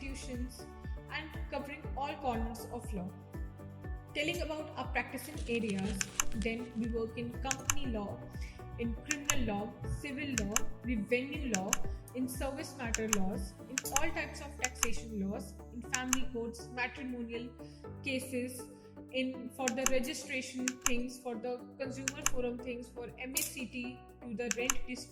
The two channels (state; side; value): identical; both; correlation 1.00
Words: and covering all corners of law. Telling about our practicing areas, then we work in company law, in criminal law, civil law, revenue law, in service matter laws, in all types of taxation laws, in family courts, matrimonial cases, in for the registration things, for the consumer forum things, for MACT, to the rent